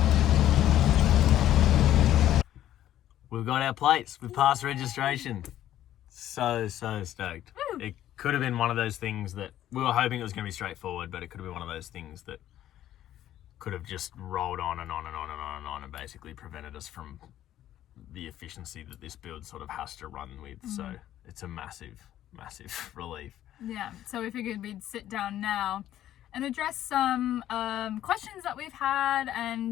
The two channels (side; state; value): right; quieter; 12.4 dB